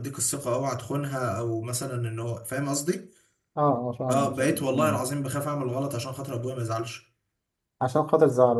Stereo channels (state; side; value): identical; both; correlation 1.00